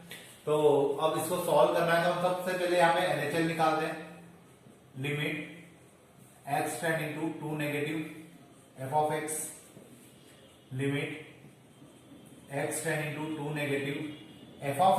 तो अब इसको सॉल्व करना है, तो हम सबसे पहले यहाँ पे LHL निकालते हैं। Limit x tending to 2 negative f of x, limit x tending to 2 negative f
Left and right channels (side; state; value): both; identical; correlation 1.00